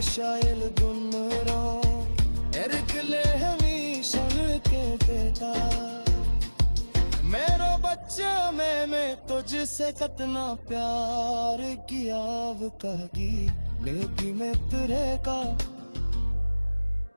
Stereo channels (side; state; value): both; inverted; correlation -1.00